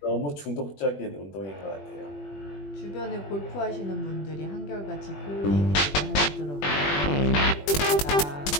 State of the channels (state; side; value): late; right; 21 ms